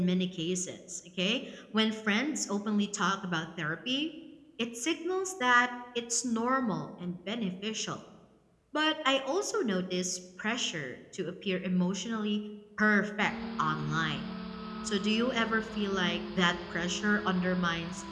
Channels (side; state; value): both; identical; correlation 1.00